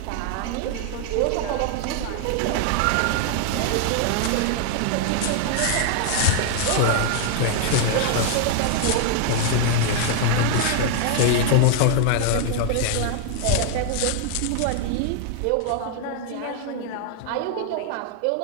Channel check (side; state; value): both; different; correlation 0.00